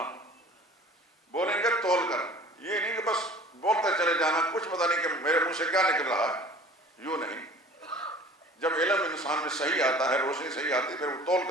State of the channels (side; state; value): both; normal; correlation 0.46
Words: بولیں گے تول کر، یہ نہیں کہ بس بولتے چلے جانا، کچھ پتہ نہیں کہ میرے منہ سے کیا نکل رہا ہے، یوں نہیں۔ جب علم انسان میں صحیح آتا ہے، روشنی صحیح آتی ہے، پھر وہ تول